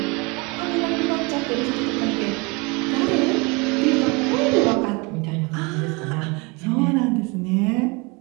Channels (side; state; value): left; quieter; 28.2 dB